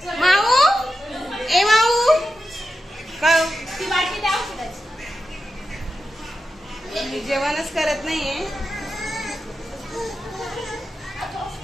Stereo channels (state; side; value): normal; both; correlation 0.90